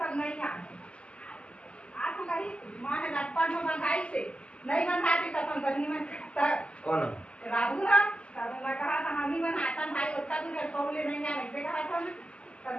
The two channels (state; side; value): late; right; 0.054 ms